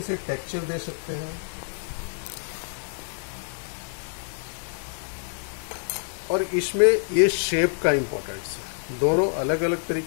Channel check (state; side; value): silent; right; digital silence